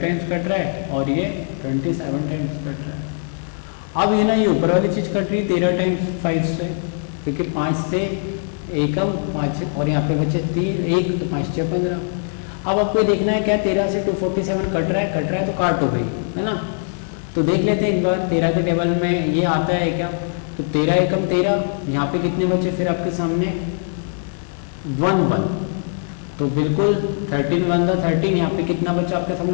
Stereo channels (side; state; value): right; silent; digital silence